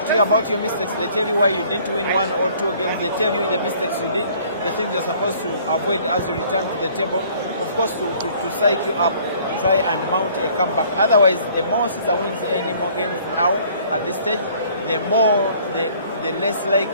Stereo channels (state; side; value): inverted; both; correlation -0.57